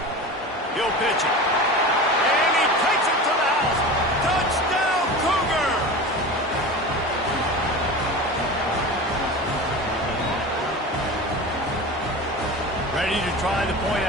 He'll pitch it. And he takes it to the house. Touchdown, Cougar! Ready to try the point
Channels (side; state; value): both; normal; correlation 0.31